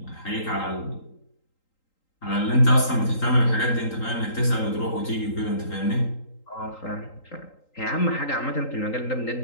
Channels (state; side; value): late; right; 3.8 ms